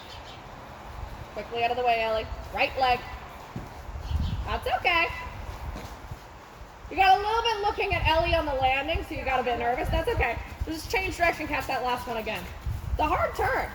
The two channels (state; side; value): identical; both; correlation 1.00